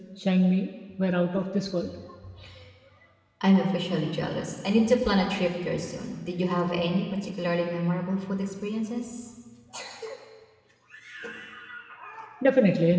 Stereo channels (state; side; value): identical; both; correlation 1.00